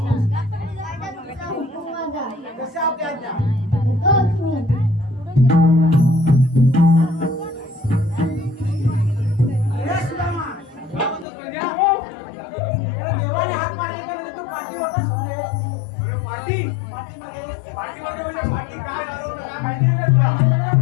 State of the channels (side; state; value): right; drops out; at 11.2 s